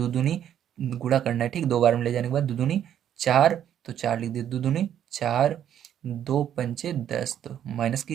दूनी गुणा करना है, ठीक। 2 बार में ले जाने के बाद दो दूनी 4, तो 4 लिख दिए, दो दूनी 4, 2 पंचे 10, तो माइनस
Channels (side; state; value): left; quieter; 10.1 dB